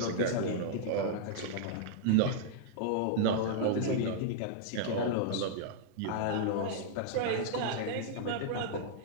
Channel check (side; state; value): both; different; correlation -0.01